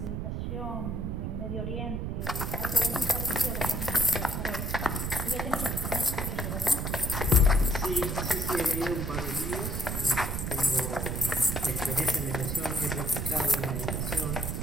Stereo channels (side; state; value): right; noise; rumble, 2 dB below the sound